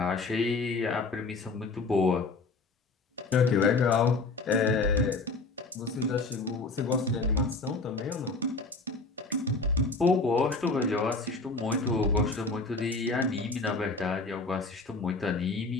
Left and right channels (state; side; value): quieter; right; 3.7 dB